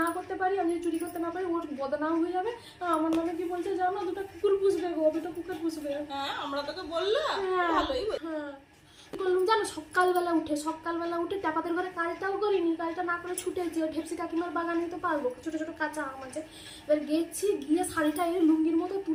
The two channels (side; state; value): both; identical; correlation 1.00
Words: করতে পারি, আমি যদি চুরি করতে না পারি, ওর বদনাম হয়ে যাবে। আমার নামে কি বলছে জানো, দুটো কুকুর পুষবে গো, দুটো কুকুর পুষবে। হ্যাঁ আমরা তোকে বললাম, ভালোই। হ্যাঁ বললাম জানো, সকালবেলা উঠে ট্যাপাদের ঘরে কাজটাও করিনি, কাজটা না করে ছুটেছি। ওই ঢেপসি কাকিমার বাগান নিতে পারবো, ছোট ছোট কাঁচা আম আছে। এবার গেছি, গিয়ে শাড়িটা এনে লুঙ্গির মতো